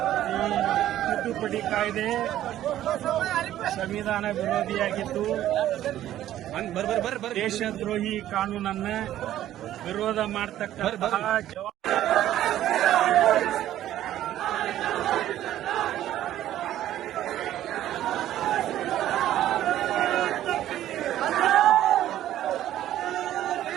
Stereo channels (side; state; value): left; quieter; 12.7 dB